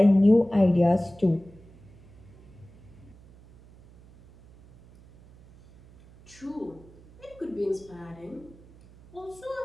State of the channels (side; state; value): right; noise; hum, 24 dB below the sound